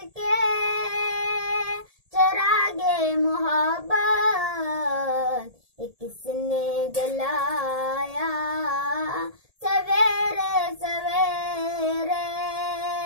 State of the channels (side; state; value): left; late; 1.7 ms